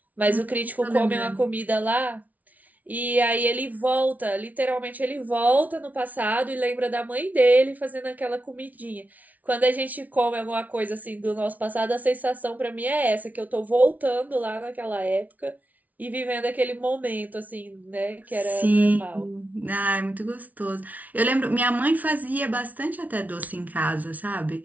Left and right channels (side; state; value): left; late; 0.074 ms